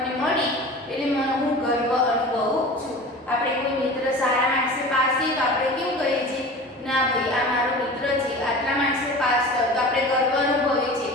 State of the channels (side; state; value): both; normal; correlation 0.37